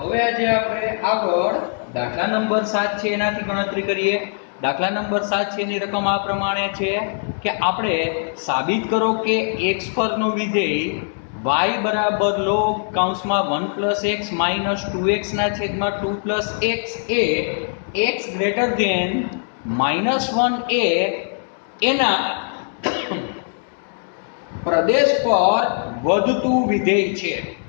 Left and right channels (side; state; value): right; silent; 65 dB below the other